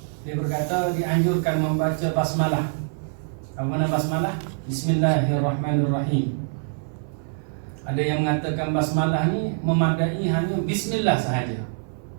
dia berkata dianjurkan membaca basmalah. Apa makna basmalah? Bismillahirrahmanirrahim. Ada yang mengatakan basmalah ni memadai hanya bismillah sahaja.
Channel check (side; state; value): left; silent; 62 dB below the other